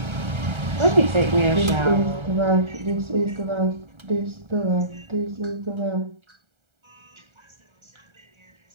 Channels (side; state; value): left; late; 1.3 ms